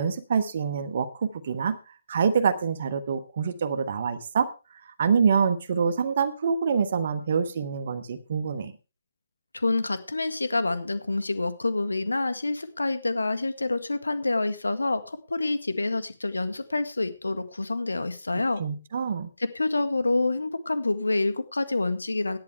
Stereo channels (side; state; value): both; inverted; correlation -0.85